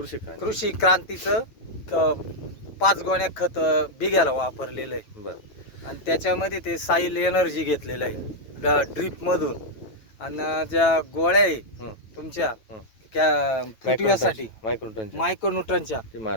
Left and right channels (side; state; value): right; late; 9.1 ms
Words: क्रांती. कृषी क्रांतीचं 5 गोण्या खत बिघ्याला वापरलेलं आहे. बरं. आणि त्याच्यामध्ये ते साईल एनर्जी घेतलेलं आहे ड्रीप मधून. आणि ज्या गोळ्या आहे तुमच्या त्या फुटव्यासाठी मायक्रोन्यूट्रनच्या ते